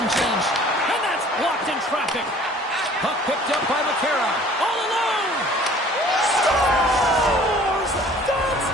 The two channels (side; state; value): both; normal; correlation 0.51